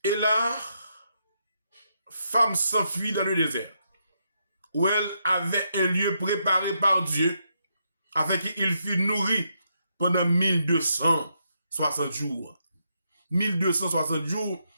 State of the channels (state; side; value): inverted; both; correlation -0.79